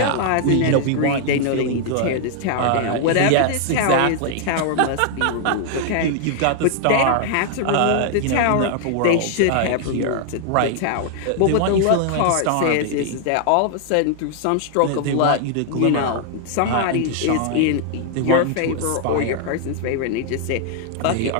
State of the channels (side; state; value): both; different; correlation 0.00